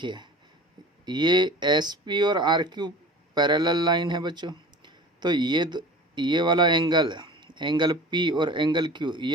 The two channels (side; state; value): both; normal; correlation 0.39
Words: ये एस पी और आर क्यू पैरेलल लाइन है बच्चों, तो ये वाला एंगल पी और एंगल क्यू